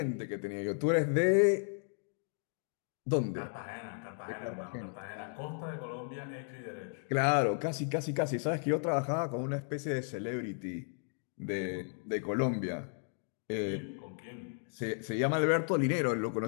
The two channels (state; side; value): silent; right; 55 dB below the other